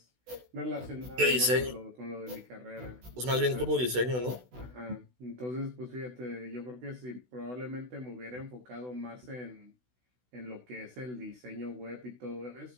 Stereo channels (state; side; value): late; left; 16 ms